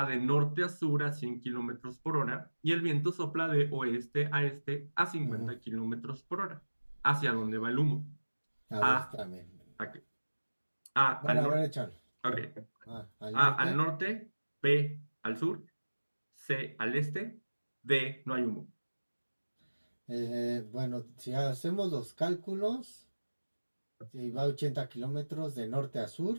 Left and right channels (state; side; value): inverted; both; correlation -1.00